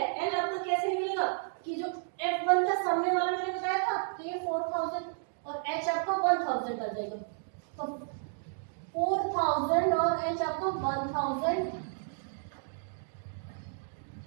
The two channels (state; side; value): silent; left; digital silence